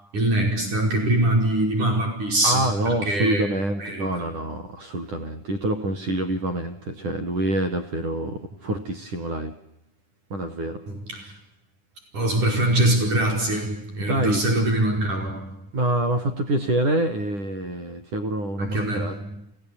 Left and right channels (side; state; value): left; late; 10 ms